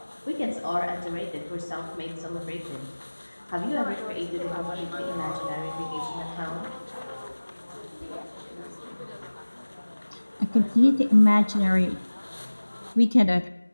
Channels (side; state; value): both; inverted; correlation -1.00